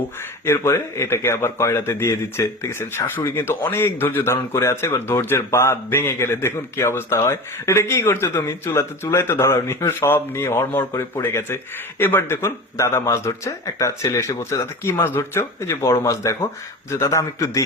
এরপরে এটাকে আবার কয়লাতে দিয়ে দিচ্ছে। ঠিক আছে, শাশুড়ি কিন্তু অনেক ধৈর্য ধারণ করে আছে। এবার ধৈর্যের বাঁধ ভেঙে গেলে দেখুন কি অবস্থা হয়। এটা কি করছো তুমি? চুলায় তো ধরাও নি, সব নিয়ে হড়মড় করে পড়ে গেছে। এবার দেখুন দাদা মাছ ধরছে, একটা ছেলে এসে বলছে, দাদা কি মাছ ধরছো? এই যে বড় মাছ দেখো। যে দাদা আমি একটু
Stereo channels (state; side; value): normal; both; correlation 0.31